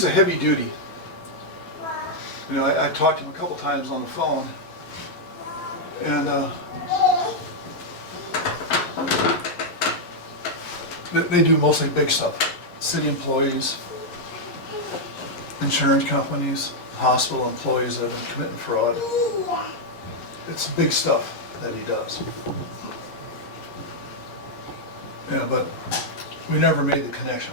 a heavy duty. You know, I talked to him a couple times on the phone, and they do mostly big stuff. City employees, insurance companies, hospital employees that have been committing fraud. It's big stuff that he does. Yeah, but we never made the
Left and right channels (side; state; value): right; late; 11 ms